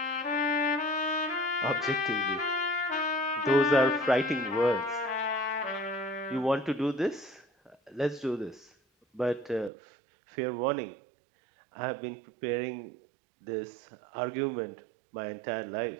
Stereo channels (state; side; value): drops out; left; at 9.7 s